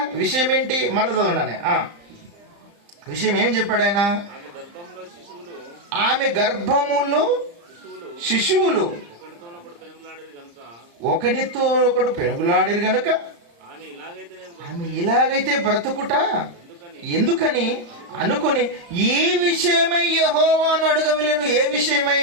విషయం ఏంటి? మరల చదవండి. విషయం ఏం చెప్పాడు ఆయన? ఆమె గర్భములో శిశువులు ఒకనితో ఒకడు పెనుగులాడిరు గనుక ఆమె ఇలాగైతే బ్రతుకుట ఎందుకని అనుకుని ఈ విషయమై యెహోవాను అడగవలెను. ఏ విషయమై?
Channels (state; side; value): late; left; 35 ms